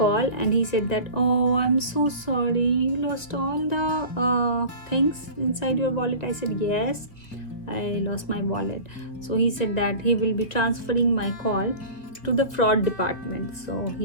and he said that I am so sorry, you lost all the things inside your wallet. I said yes, I lost my wallet. So he said that he will be transferring my call to the fraud department. So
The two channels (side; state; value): right; late; 2.2 ms